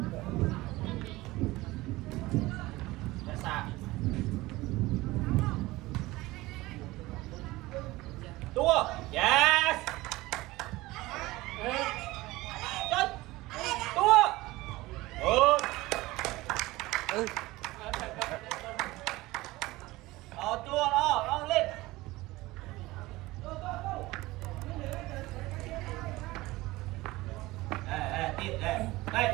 ra xa tua yes chơi tua tua đó lên tiếp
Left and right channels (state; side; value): quieter; left; 19.5 dB